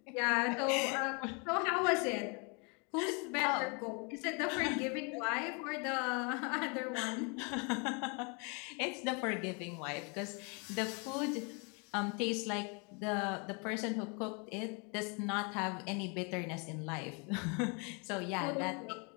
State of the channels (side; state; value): right; quieter; 33.7 dB